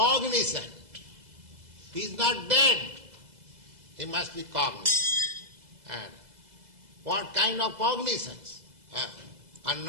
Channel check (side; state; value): left; late; 2.0 ms